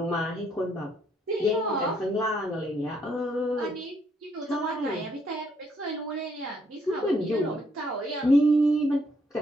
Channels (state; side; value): normal; both; correlation 0.70